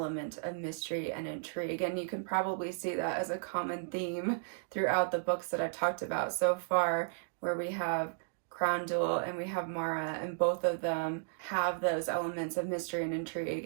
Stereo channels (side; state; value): left; silent; digital silence